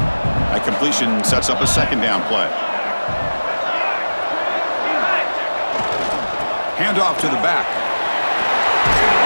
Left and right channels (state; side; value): inverted; both; correlation -1.00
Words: That completion sets up a 2nd down play. Handoff to the back.